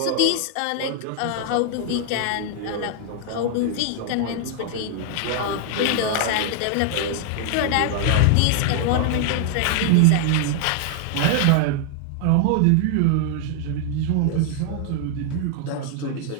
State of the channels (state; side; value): different; both; correlation 0.00